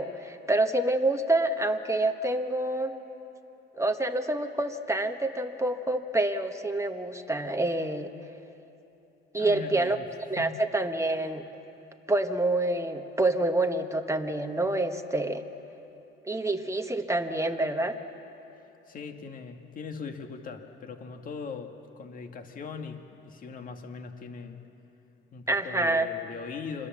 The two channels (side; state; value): both; normal; correlation 0.62